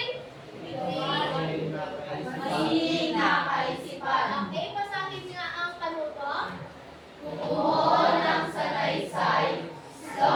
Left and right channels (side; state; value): both; identical; correlation 1.00